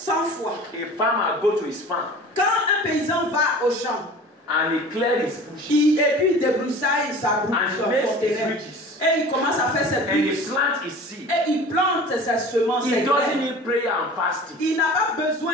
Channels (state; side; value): normal; both; correlation 0.40